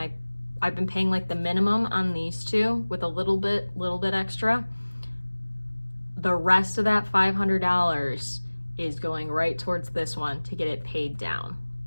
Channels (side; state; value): both; inverted; correlation -1.00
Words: I've been paying like the minimum on these two with a little bit extra. The rest of that $500 is going right towards this one to get it paid down.